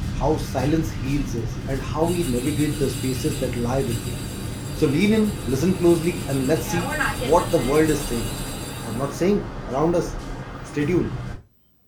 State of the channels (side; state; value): both; identical; correlation 1.00